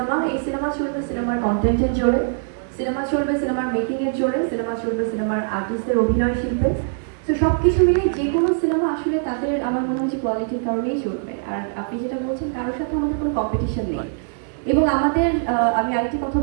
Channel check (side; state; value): left; silent; digital silence